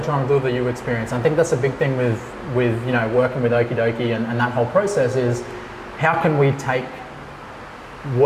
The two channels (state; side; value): identical; both; correlation 1.00